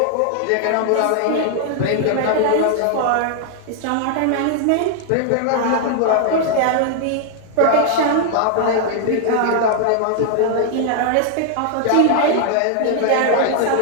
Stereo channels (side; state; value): both; different; correlation 0.00